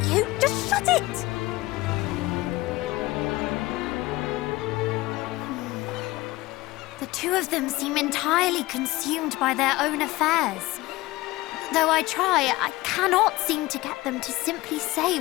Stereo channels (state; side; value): quieter; right; 19.4 dB